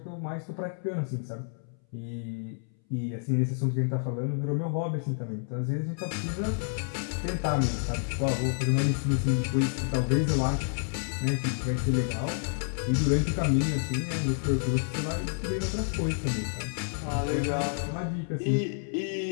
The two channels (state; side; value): silent; right; 58 dB below the other